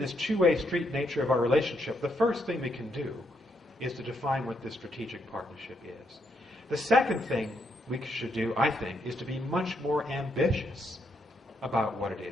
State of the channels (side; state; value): both; normal; correlation 0.77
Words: this two-way street nature of our relationship, the first thing we can do is to define what this strategic partnership is. The second thing we should do, I think, is to be much more ambitious about what